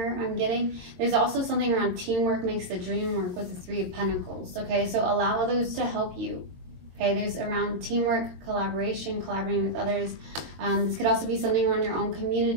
I'm getting. There's also something around teamwork makes the dream work with the Three of Pentacles, okay? So allow others to help you, okay? There's around teamwork, collaboration, collaborating with others. This could also be something around your own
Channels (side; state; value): left; late; 22 ms